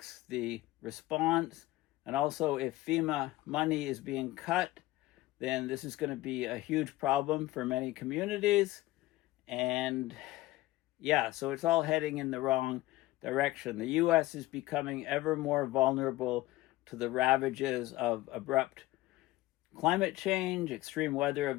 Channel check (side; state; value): right; quieter; 17.6 dB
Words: the response. And also, if FEMA money is being cut, then this is going to be a huge problem for many communities. And yeah, so it's all heading in the wrong direction. The U.S. is becoming ever more vulnerable to the ravages of abrupt climate change, extreme weather